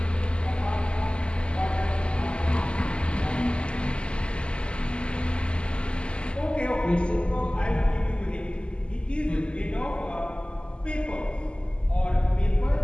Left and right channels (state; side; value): late; right; 0.051 ms